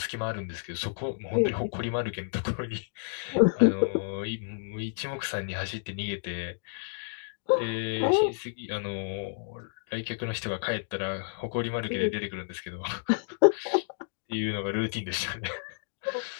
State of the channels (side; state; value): right; silent; digital silence